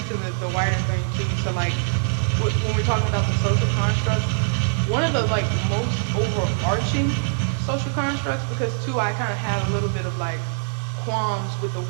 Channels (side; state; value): left; silent; digital silence